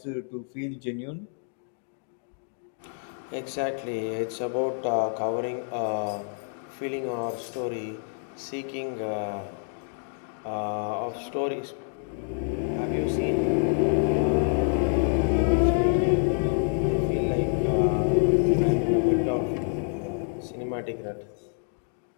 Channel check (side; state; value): right; silent; 60 dB below the other